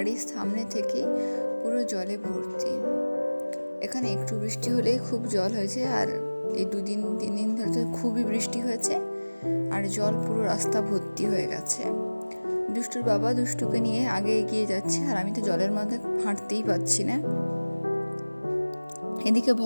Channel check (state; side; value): inverted; both; correlation -1.00